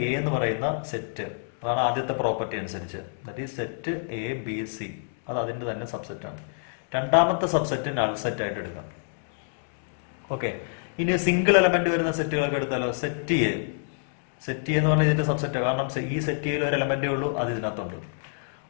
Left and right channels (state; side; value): silent; right; digital silence